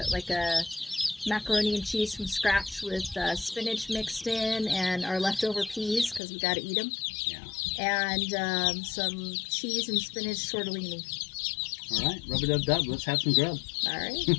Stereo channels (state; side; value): drops out; right; at 6.2 s